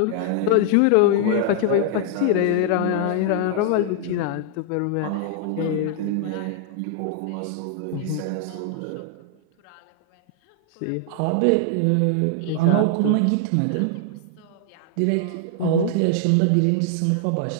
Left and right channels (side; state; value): both; different; correlation 0.00